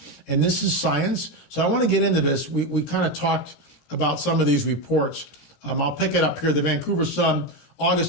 And this is science. So I want to get into this. We kind of talked about some of these reports. I'll pick it up here. The Vancouver Sun,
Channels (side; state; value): right; late; 17 ms